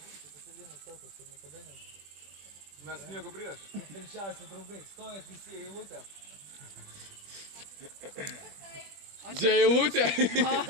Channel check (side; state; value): left; late; 20 ms